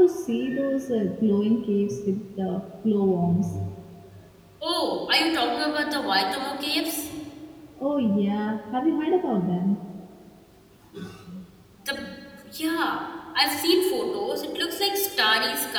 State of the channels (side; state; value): both; identical; correlation 1.00